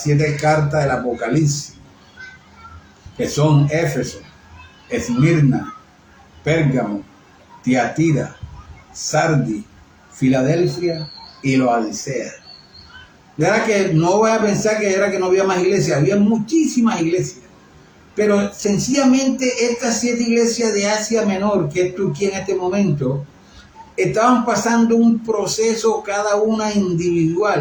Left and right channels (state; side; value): identical; both; correlation 1.00